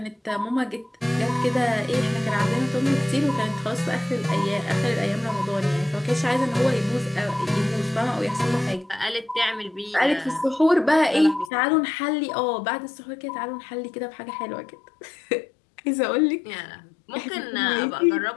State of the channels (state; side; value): drops out; right; at 11.5 s